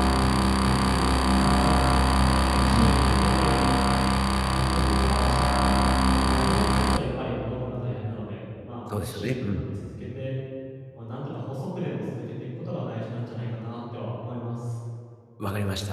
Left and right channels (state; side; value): identical; both; correlation 1.00